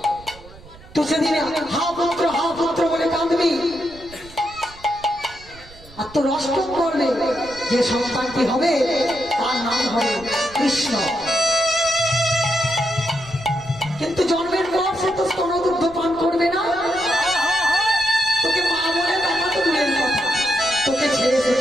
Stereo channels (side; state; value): right; noise; rumble, 21 dB below the sound